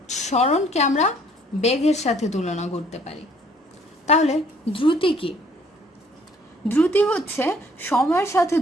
সরণকে আমরা বেগের সাথে তুলনা করতে পারি। তাহলে দ্রুতি কি? দ্রুতি হচ্ছে সময়ের সাথে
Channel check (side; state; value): both; normal; correlation 0.61